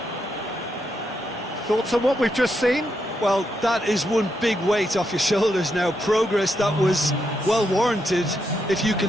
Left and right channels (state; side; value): normal; both; correlation 0.81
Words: Thoughts on what we've just seen? Well, that is one big weight off your shoulders now. Progress that was well warranted if you